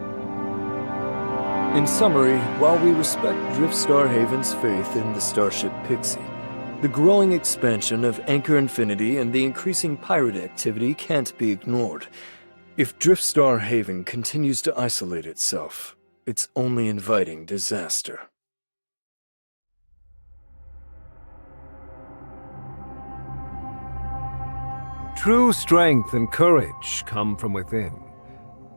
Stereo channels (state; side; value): inverted; both; correlation -1.00